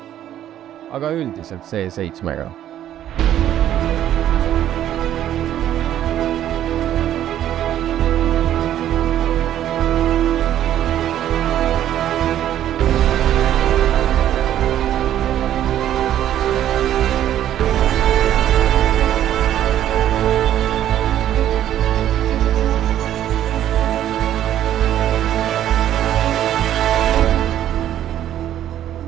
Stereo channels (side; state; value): left; quieter; 11.5 dB